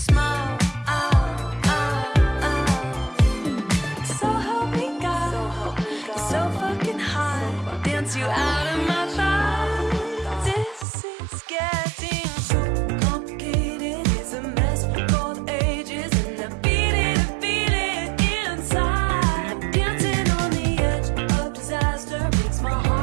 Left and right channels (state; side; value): drops out; left; at 10.9 s